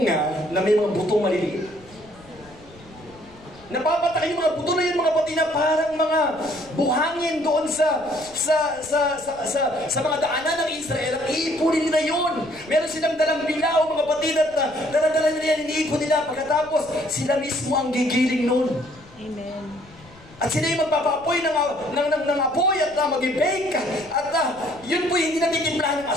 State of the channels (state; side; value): noise; left; rumble, 24 dB below the sound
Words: na may mga butong maliliit. Napapatak yung mga buto na yun mga patid na parang mga buhangin doon sa mga daanan ng Israel. Ang iipunin nila yun. Meron silang dalang bilaw mga patid at daladala nila yan, iniipon nila. Pagkatapos, sila mismo ang gigiling nun. Amen. At sila yung magpapapoy ng apoy at mag-bake. At yun po hindi natitimplahan ng